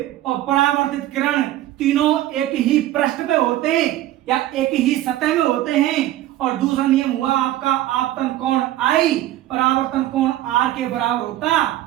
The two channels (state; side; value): quieter; left; 14.4 dB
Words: और परावर्तित किरण तीनों एक ही पृष्ठ पे होते हैं या एक ही सतह में होते हैं। और दूसरा नियम हुआ आपका आपतन कोण I, परावर्तन कोण R के बराबर होता